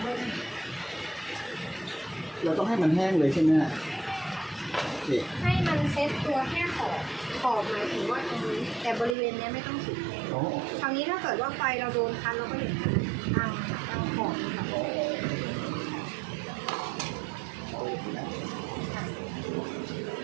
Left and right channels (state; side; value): drops out; left; at 9.2 s